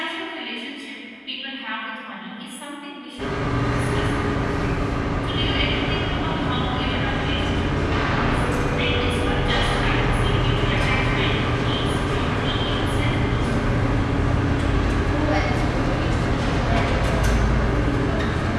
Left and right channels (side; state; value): both; identical; correlation 1.00